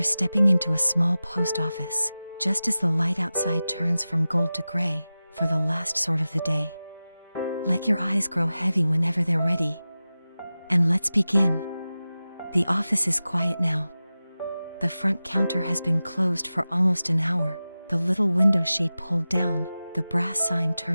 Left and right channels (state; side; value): inverted; both; correlation -0.95